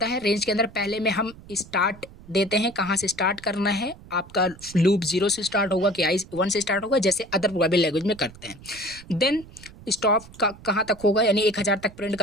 है। रेंज के अंदर पहले में हम स्टार्ट देते हैं, कहाँ से स्टार्ट करना है, आपका लूप 0 से स्टार्ट होगा कि 1 से स्टार्ट होगा, जैसे अदर प्रोग्रामिंग लैंग्वेज में करते हैं। देन स्टॉप कहाँ तक होगा, यानी 1000 तक प्रिंट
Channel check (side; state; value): right; noise; rumble, 20 dB below the sound